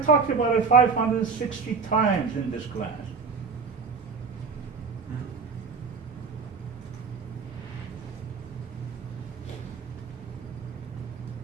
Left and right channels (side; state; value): left; quieter; 5.3 dB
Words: about it 560 times in this class.